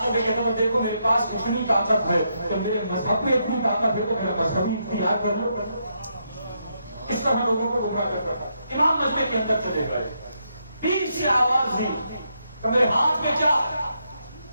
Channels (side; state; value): both; inverted; correlation -0.79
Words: نے کہتا ہوں دیکھو میرے پاس اتنی طاقت ہے تو میرے مذہب میں اتنی طاقت ہے تو میرا مذہبی اختیار کر لو. اس طرح لوگوں کو گمراہ کرتا تھا. امام مجمع کے اندر چلے گئے، بیچ سے آواز دی کہ میرے ہاتھ میں کیا ہے؟